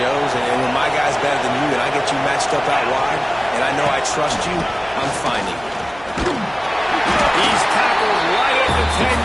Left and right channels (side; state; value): right; noise; hum, 22 dB below the sound